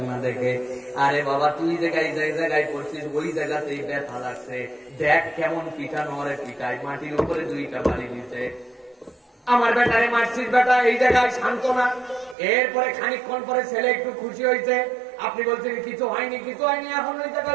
দেখে, আরে বাবা তুই জায়গায় জায়গায় করছিস ওই জায়গাতেই ব্যথা লাগছে, দেখ কেমন পিটানো, আরে পিটাই, মাটির উপরে 2টা বাড়ি দিতে, আমার বেটারে মারছিস বেটা, এই জায়গায় শান্ত না। এরপরে খানিকক্ষণ পরে ছেলে একটু খুশি হয়েছে, আপনি বলছেন কিছু হয়নি, কিছু হয়নি, এখন ওই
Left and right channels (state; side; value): drops out; left; at 12.4 s